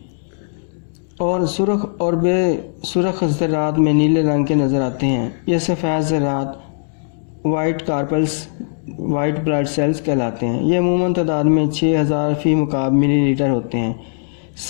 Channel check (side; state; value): right; silent; digital silence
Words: اور سرخ اور بے سرخ ذرات میں نیلے رنگ کے نظر آتے ہیں۔ یہ سفید ذرات white corpuscles white blood cells کہلاتے ہیں۔ یہ عموماً تعداد میں 6000 فی مکعب ملی لیٹر ہوتے ہیں۔